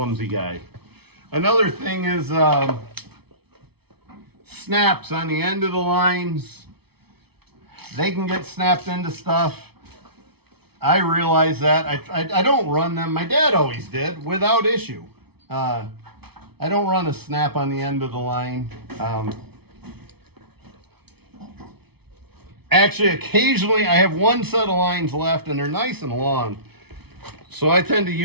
guy. Another thing is snaps on the end of the lines. They can get snapped into stuff. I realize that. I don't run them. My dad always did without issue. I don't run a snap on the end of the line. Actually, occasionally I have one set of lines left and they're nice and long. So I tend to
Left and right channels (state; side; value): late; left; 0.98 ms